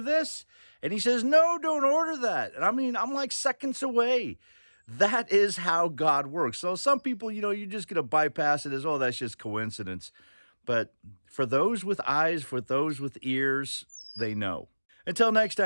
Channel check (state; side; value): inverted; both; correlation -1.00